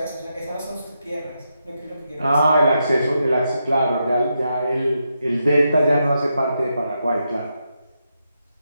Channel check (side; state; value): both; inverted; correlation -0.84